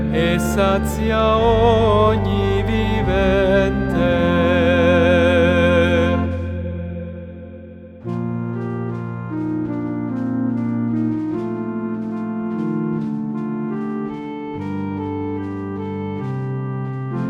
e sazia ogni vivente.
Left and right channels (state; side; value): identical; both; correlation 1.00